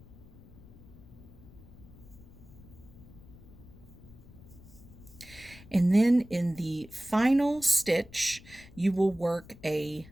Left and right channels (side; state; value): left; noise; rumble, 20 dB below the sound